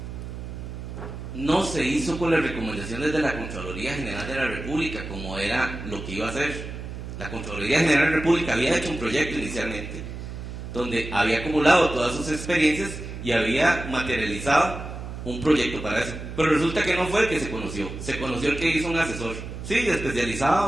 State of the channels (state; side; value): noise; right; hum, 9 dB below the sound